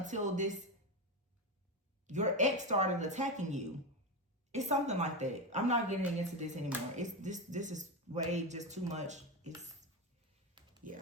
your ex started attacking you. It's something like that. I'm not getting into this anymore. This is way just too much.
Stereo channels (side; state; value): both; normal; correlation 0.15